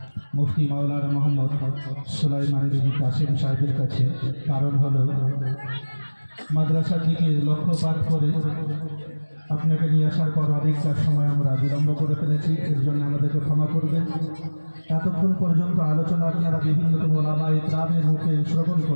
মুফতি মাওলানা মোহাম্মদ সুলাইমান বিন কাসিম সাহেবের কাছে। কারণ হলো মাদ্রাসার দিকে লক্ষ্যপাত করে আপনাকে নিয়ে আসার পর অনেকটা সময় আমরা বিলম্ব করে ফেলেছি, এর জন্য আমাদেরকে ক্ষমা করবেন। এতক্ষণ পর্যন্ত আলোচনা আপনারা বিভিন্ন ওলামা ইকরামের মুখে শ্রবণ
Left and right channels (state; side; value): inverted; both; correlation -1.00